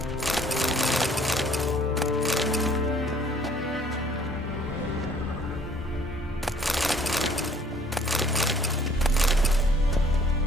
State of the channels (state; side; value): normal; both; correlation 0.58